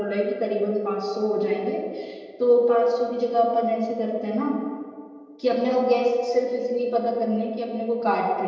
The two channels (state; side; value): identical; both; correlation 1.00